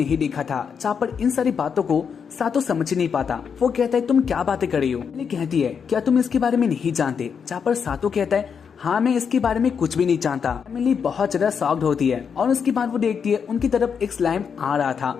देखा था। जहाँ पर इन सारी बातों को सातो समझ नहीं पाता। वो कहता है तुम क्या बातें कर रही हो। एमिली कहती है क्या तुम इसके बारे में नहीं जानते। जहाँ पर सातो कहता है हाँ मैं इसके बारे में कुछ भी नहीं जानता। एमिली बहुत ज्यादा शॉक्ड होती है और उसके बाद वो देखती है उनकी तरफ एक स्लाइम आ रहा था।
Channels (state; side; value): quieter; right; 6.6 dB